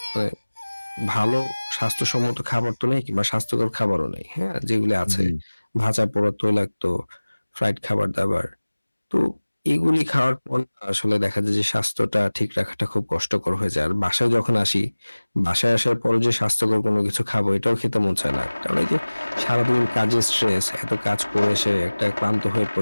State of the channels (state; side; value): inverted; both; correlation -1.00